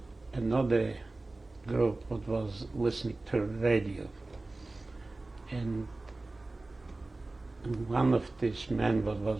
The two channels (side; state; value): left; quieter; 3.1 dB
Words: group that was listening to radio, and one of these men that was